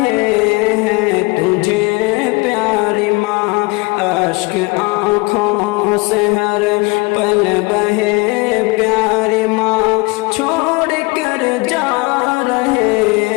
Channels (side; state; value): right; quieter; 25.8 dB